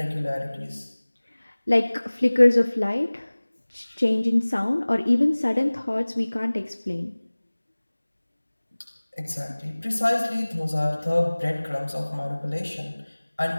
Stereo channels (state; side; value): inverted; both; correlation -1.00